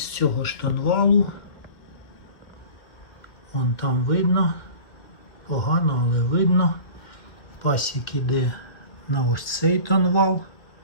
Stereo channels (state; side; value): late; right; 1.9 ms